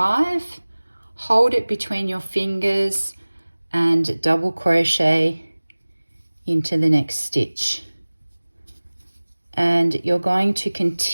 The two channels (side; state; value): both; inverted; correlation -1.00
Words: Hold it between your fingers and double crochet into the next stitch. And you're going to